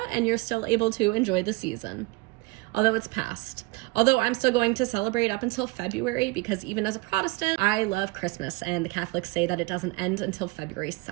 and you're still able to enjoy the season. Although it's past. Although I'm still going to celebrate up until February because even as a Protestant, I love Christmas and the Catholics say that it doesn't end until February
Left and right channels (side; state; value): left; quieter; 23.5 dB